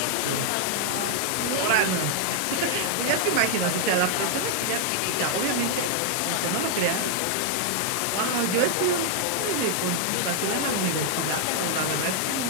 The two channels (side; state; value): both; different; correlation -0.01